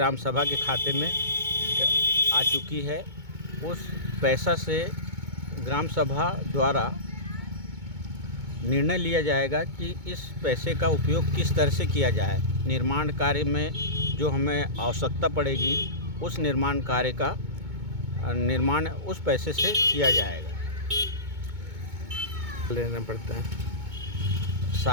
सभा के खाते में आ चुकी है। उस पैसा से ग्राम सभा द्वारा निर्णय लिया जाएगा कि इस पैसे का उपयोग किस तरह से किया जाए। निर्माण कार्य में जो हमें आवश्यकता पड़ेगी, उस निर्माण कार्य का निर्माण उस पैसे से किया जाएगा। लेना पड़ता है।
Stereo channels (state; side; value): late; left; 2.2 ms